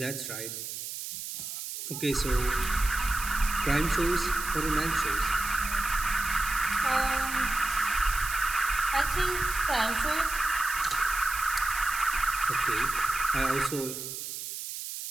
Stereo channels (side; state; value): right; noise; hiss, 7 dB below the sound